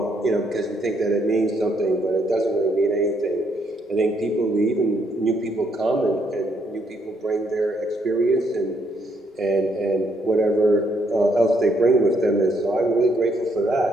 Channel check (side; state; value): both; normal; correlation 0.72